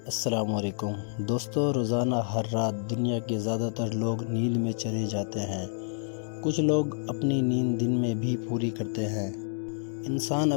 السلام علیکم دوستو، روزانہ ہر رات دنیا کے زیادہ تر لوگ نیند میں چلے جاتے ہیں۔ کچھ لوگ اپنی نیند دن میں بھی پوری کرتے ہیں۔ انسان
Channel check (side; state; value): right; silent; digital silence